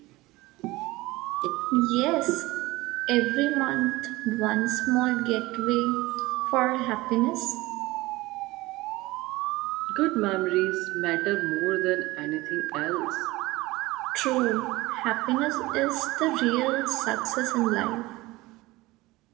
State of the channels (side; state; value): left; quieter; 20.1 dB